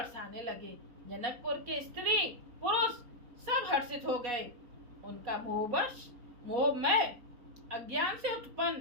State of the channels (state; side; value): late; left; 4.1 ms